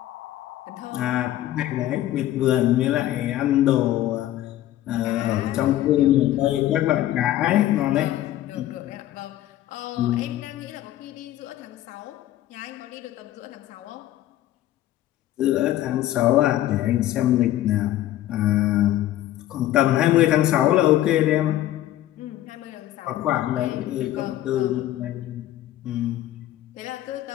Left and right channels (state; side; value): quieter; right; 13.7 dB